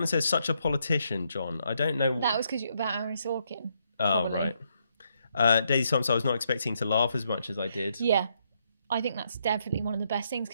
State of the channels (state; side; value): inverted; both; correlation -0.76